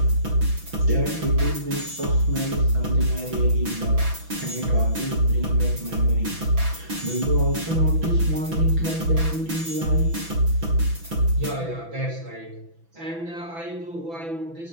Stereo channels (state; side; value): late; left; 6.0 ms